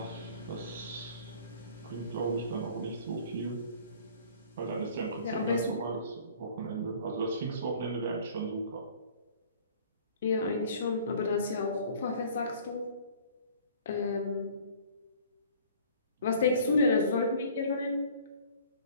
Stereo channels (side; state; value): both; inverted; correlation -0.50